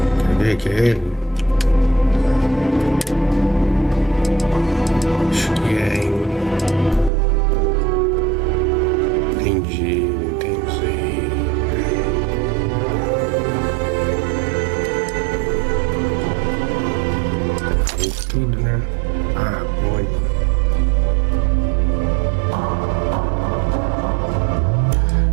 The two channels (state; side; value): drops out; left; at 7.1 s